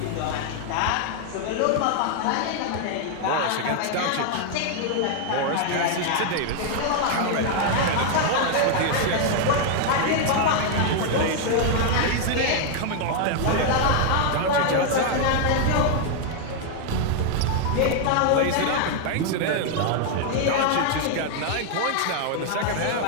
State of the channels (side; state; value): both; different; correlation 0.00